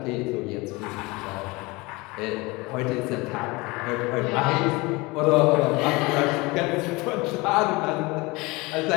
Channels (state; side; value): quieter; right; 24.0 dB